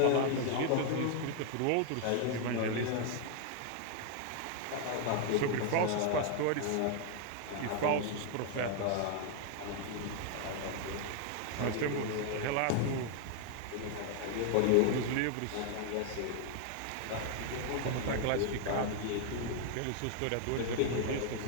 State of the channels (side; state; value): both; different; correlation 0.00